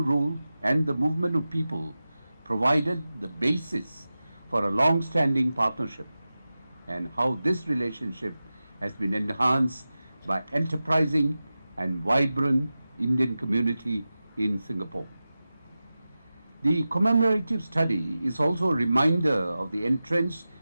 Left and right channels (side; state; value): both; inverted; correlation -0.95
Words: rule, and the movement of people provided the basis for a long-standing partnership, and how this relationship has been enhanced by enterprising and vibrant Indian community in Singapore. The commemorative study is also a reminder of the entrenched